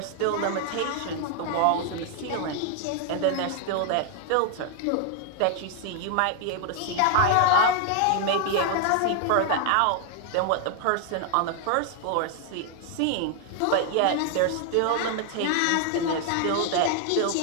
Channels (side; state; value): both; different; correlation 0.00